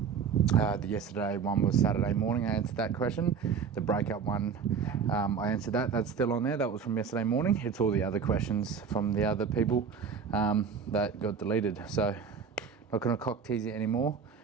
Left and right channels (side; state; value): left; quieter; 6.4 dB